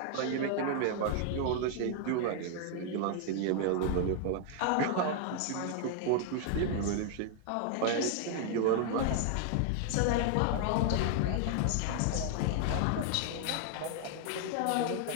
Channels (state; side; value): different; both; correlation 0.00